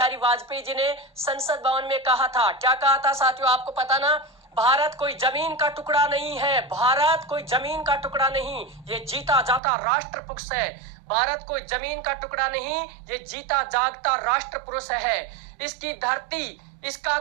वाजपेयी जी ने संसद भवन में कहा था, क्या कहा था साथियों, आपको पता ना? भारत कोई जमीन का टुकड़ा नहीं है, भारत कोई जमीन का टुकड़ा नहीं, ये जीता जाता राष्ट्र पुरुष है। भारत कोई जमीन का टुकड़ा नहीं, ये जीता जागता राष्ट्र पुरुष है। इसकी धरती, इसका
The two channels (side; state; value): left; drops out; at 9.6 s